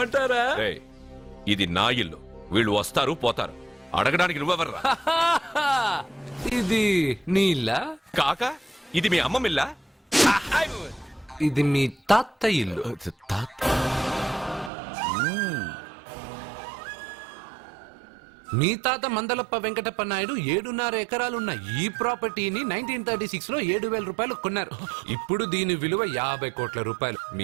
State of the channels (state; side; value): drops out; left; at 14.7 s